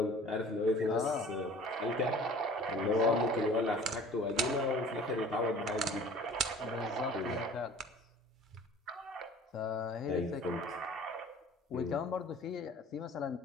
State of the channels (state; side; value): normal; both; correlation 0.47